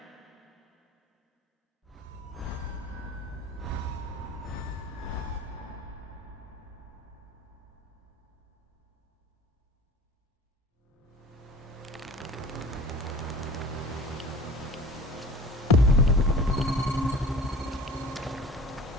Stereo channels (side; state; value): both; normal; correlation 0.42